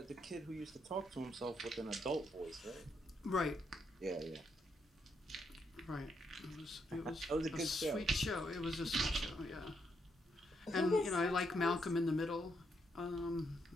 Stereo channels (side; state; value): both; normal; correlation 0.77